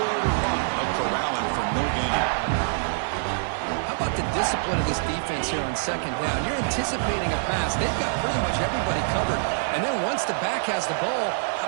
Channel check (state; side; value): silent; left; digital silence